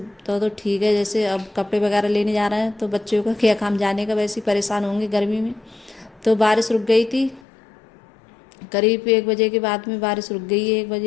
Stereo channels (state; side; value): drops out; right; at 7.4 s